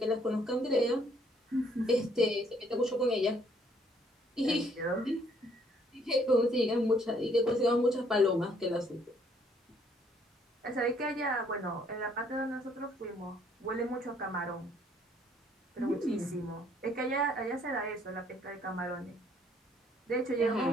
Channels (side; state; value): both; normal; correlation 0.64